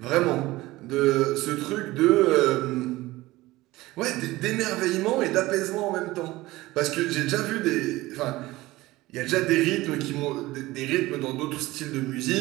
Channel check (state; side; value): quieter; left; 18.7 dB